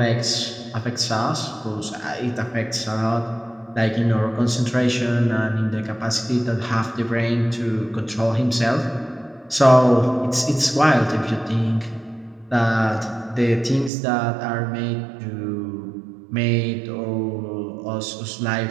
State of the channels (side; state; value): left; drops out; at 13.9 s